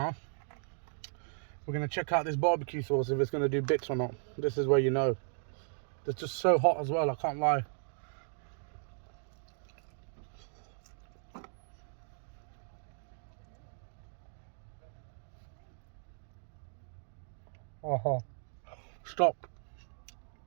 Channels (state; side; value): silent; left; digital silence